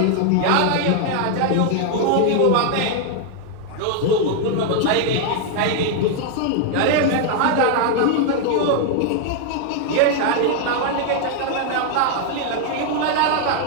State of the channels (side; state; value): both; different; correlation 0.00